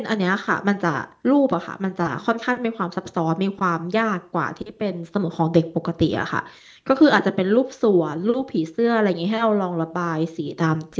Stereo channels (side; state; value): both; identical; correlation 1.00